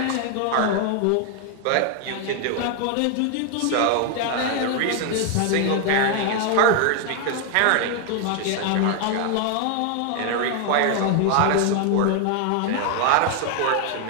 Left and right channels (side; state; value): both; different; correlation 0.00